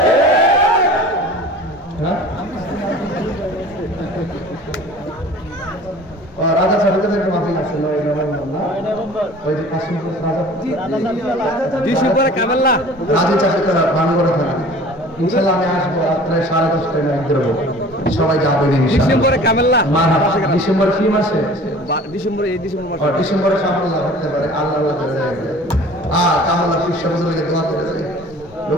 হ্যাঁ রাজা সাহেবের একটা মাহফিল আছে 9 নভেম্বর না, ওই যে কাশিমপুর রাজা চাকরিরা ভাঙড়ে থানা। ইনশাআল্লাহ আমি আসবো প্রায় 10:30 একদের সবাই যাবেন ডিসেম্বরে কামেল্লা। ডিসেম্বর কি মাসে? ডিসেম্বরে এই ডিসেম্বর মাসে। ডিসেম্বরে সামনে করতে পারে আল্লাহ করে যায়। আর কামাল্লা বিশ্ব বুঝলে দোয়া করে যায়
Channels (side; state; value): both; normal; correlation 0.45